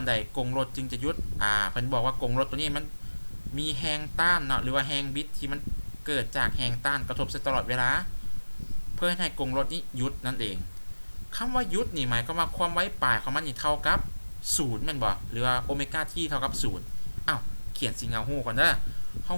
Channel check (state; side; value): inverted; both; correlation -1.00